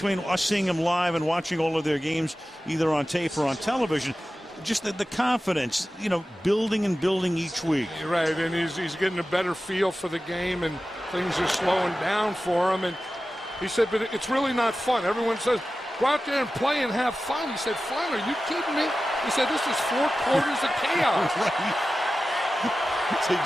us seeing him live and watching all of their games, either on tape or on television, just the confidence, you know, building and building each week. You're right, and he's getting a better feel for the game, and things are slowing down for him. And he said, but it's really not fun. Everyone says, go out there and play and have fun. He said, fun? Are you kidding me? He said, this is 4 quarters of chaos. Right. That's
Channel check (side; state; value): both; normal; correlation 0.94